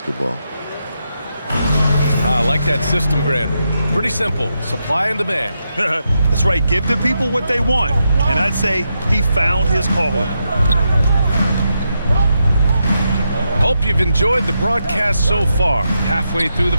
I like that system, Grant. Pretty simple. Supply and demand. That's right. Give the people what they want. And I'd say he found his calling. Hope you've enjoyed the broadcast so far. Halfway through the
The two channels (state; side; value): inverted; both; correlation -0.84